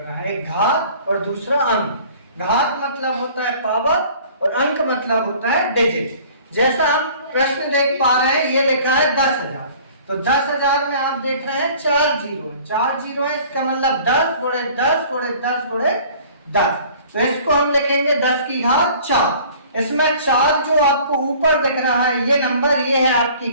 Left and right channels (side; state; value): both; inverted; correlation -0.49